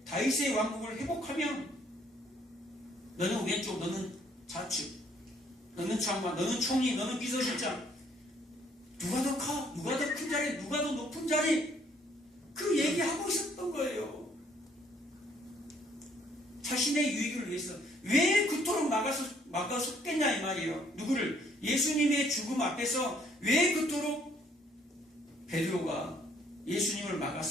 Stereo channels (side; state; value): both; normal; correlation 0.65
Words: 다윗의 왕국을 회복하면 너는 왼쪽, 너는 좌측, 너는 장관, 너는 총리, 너는 비서실장 누가 더 커? 누가 더 큰 자리? 누가 더 높은 자리? 그 얘기하고 있었던 거예요. 자신의 유익을 위해서 왜 그토록 막아섰겠냐 이 말이에요. 누구를? 예수님의 죽음 앞에서 왜 그토록 베드로가 예수님을